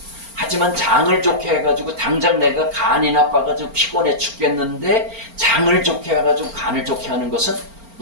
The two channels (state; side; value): late; left; 4.4 ms